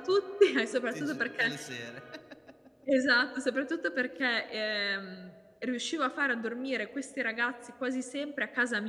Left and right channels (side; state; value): both; identical; correlation 1.00